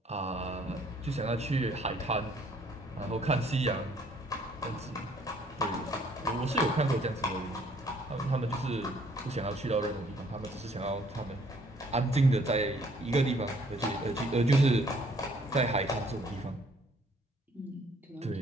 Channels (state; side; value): normal; both; correlation 0.61